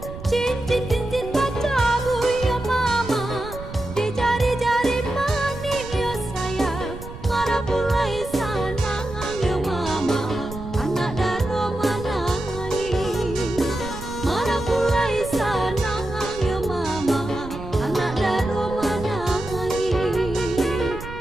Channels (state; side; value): noise; right; rumble, 12 dB below the sound